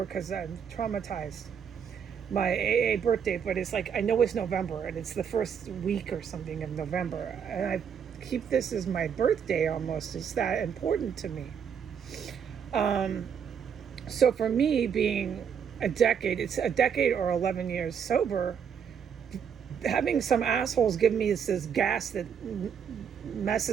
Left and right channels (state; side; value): quieter; left; 7.5 dB